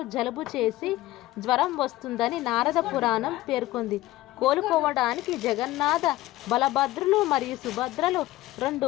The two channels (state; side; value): quieter; right; 16.9 dB